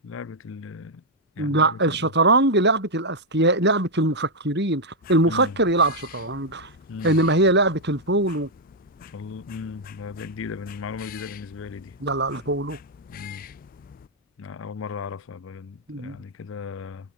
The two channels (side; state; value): both; normal; correlation -0.03